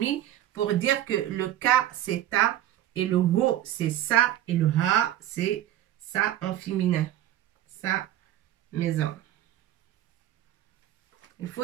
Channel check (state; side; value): quieter; left; 12.9 dB